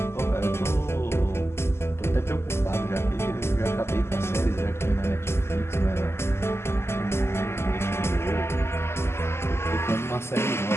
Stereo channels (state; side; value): late; right; 0.12 ms